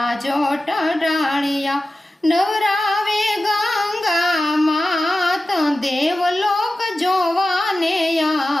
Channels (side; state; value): both; normal; correlation 0.94